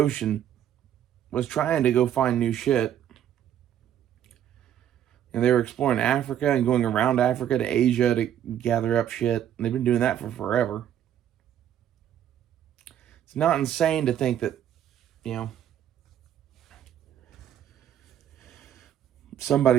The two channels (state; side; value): quieter; left; 10.4 dB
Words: was trying to go find new shit. And they were exploring Africa and going around Africa to Asia to gather up shit. And they've been doing that for forever. It's not insane to think that, you know,